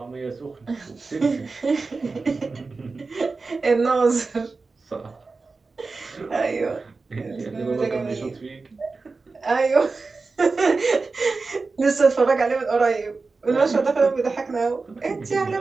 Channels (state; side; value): quieter; left; 4.0 dB